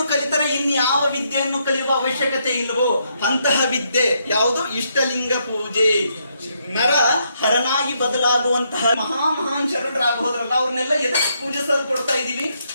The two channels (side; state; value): both; inverted; correlation -0.76